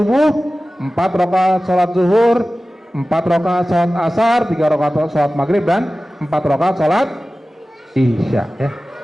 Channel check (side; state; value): both; normal; correlation 0.96